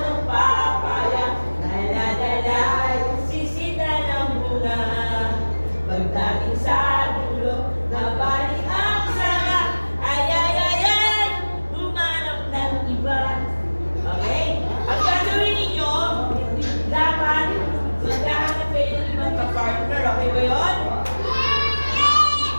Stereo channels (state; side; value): inverted; both; correlation -1.00